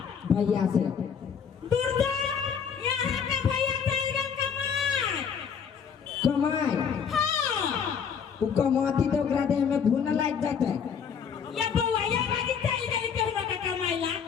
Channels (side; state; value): right; quieter; 7.0 dB